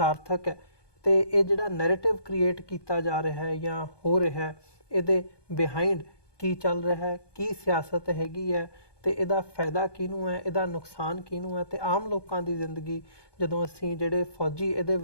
ਹੈ ਤੇ ਇਹ ਜਿਹੜਾ ਨੈਰੇਟਿਵ ਕ੍ਰੀਏਟ ਕੀਤਾ ਜਾ ਰਿਹਾ ਹੈ ਜਾਂ ਹੋ ਰਿਹਾ ਹੈ, ਇਹਦੇ ਬਿਹਾਈਂਡ ਕੀ ਚੱਲ ਰਿਹਾ ਹੈ, ਕੀ ਸਿਆਸਤ ਹੈਗੀ ਹੈ ਤੇ ਇਹਦਾ ਫਾਇਦਾ ਕਿਹਨੂੰ ਹੈ, ਇਹਦਾ ਨੁਕਸਾਨ ਕਿਹਨੂੰ ਹੈ ਤੇ ਆਮ ਲੋਕਾਂ ਦੀ ਜ਼ਿੰਦਗੀ, ਜਦੋਂ ਅਸੀਂ ਜਿਹੜੇ ਫੌਜੀ ਇਹਦੇ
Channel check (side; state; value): right; late; 1.2 ms